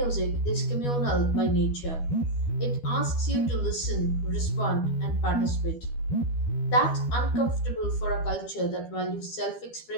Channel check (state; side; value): late; right; 12 ms